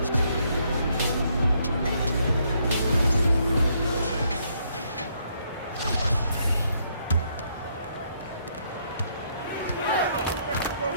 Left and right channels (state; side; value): inverted; both; correlation -0.72